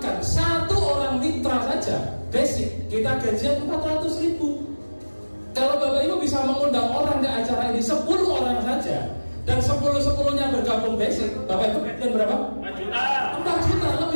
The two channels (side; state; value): both; inverted; correlation -1.00